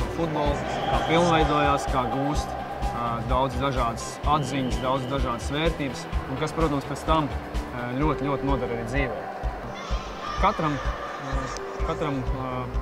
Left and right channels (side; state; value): both; identical; correlation 1.00